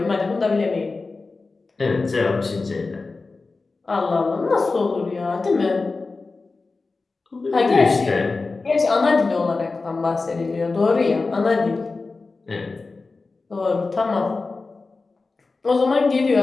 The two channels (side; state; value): right; quieter; 3.9 dB